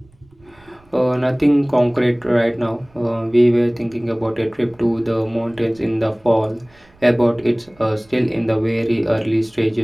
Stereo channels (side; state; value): right; noise; rumble, 30 dB below the sound